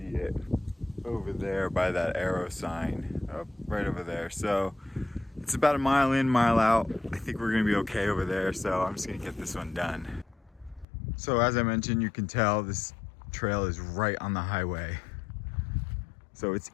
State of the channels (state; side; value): drops out; right; at 10.9 s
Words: it over there by that arrow sign right over there. So it's about a mile in, mile out. I think we're gonna be okay over there, so I'm just gonna get this one done. So as I mentioned, you can tell this trail is right on the highway, so it's